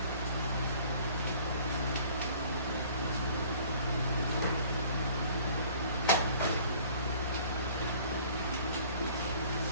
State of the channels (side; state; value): both; inverted; correlation -0.52